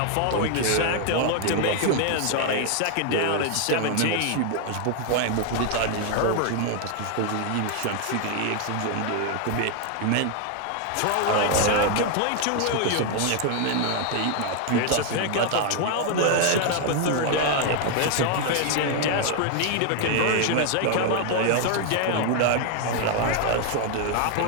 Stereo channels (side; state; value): both; different; correlation 0.00